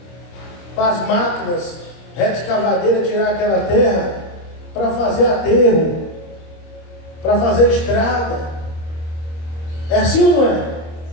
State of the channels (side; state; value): right; late; 26 ms